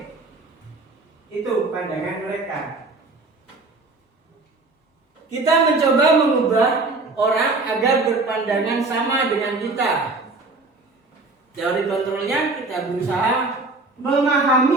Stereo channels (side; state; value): left; quieter; 3.4 dB